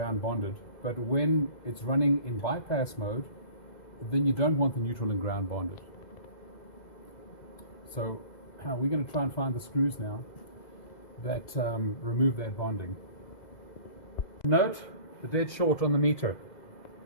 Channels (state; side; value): late; right; 2.0 ms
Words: bonded, but when it's running in bypass mode, then you don't want the neutral and ground bonded. So we're going to try and find the screws now that remove that bonding. Note the dead short on the meter